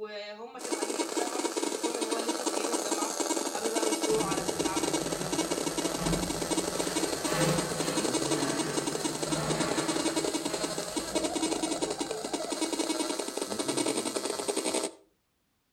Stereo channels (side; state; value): both; identical; correlation 1.00